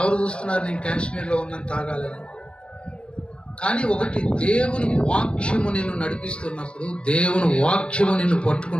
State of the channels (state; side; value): late; right; 0.056 ms